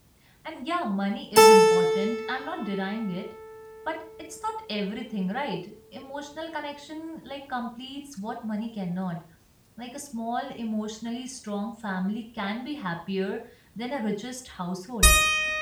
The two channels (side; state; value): both; identical; correlation 1.00